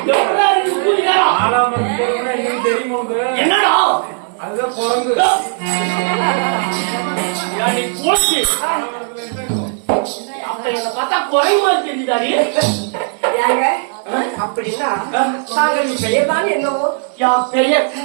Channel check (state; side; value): silent; left; 69 dB below the other